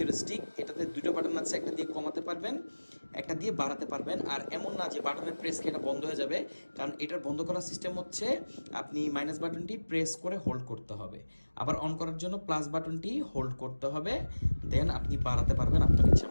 এটাতে দুটো বাটন আছে, একটা দিয়ে কমাতে পারবেন, একটা দিয়ে বাড়াতে পারবেন। আর এমন না যে বাটনের প্রেস খেয়ে এটা বন্ধ হয়ে যাবে, কারণ এটার বন্ধ করার সিস্টেম হচ্ছে আপনি মাইনাস বাটনটি প্রেস করে হোল্ড করতে হবে, আবার অন করার জন্য প্লাস বাটনটি হোল্ড করতে হবে, দেন আপনি বাড়াতে পারবেন আপনার ইচ্ছা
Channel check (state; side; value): inverted; both; correlation -1.00